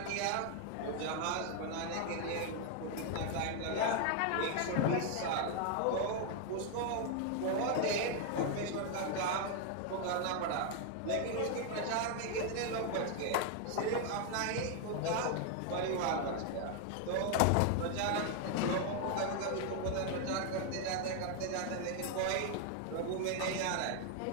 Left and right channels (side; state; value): both; different; correlation 0.00